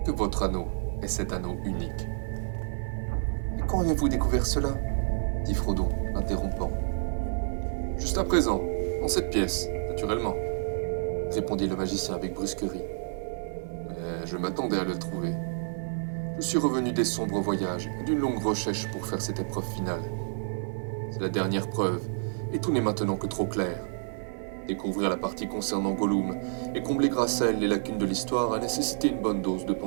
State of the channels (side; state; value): left; silent; digital silence